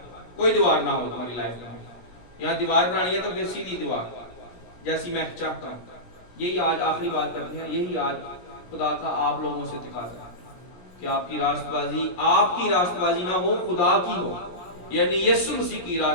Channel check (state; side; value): late; right; 17 ms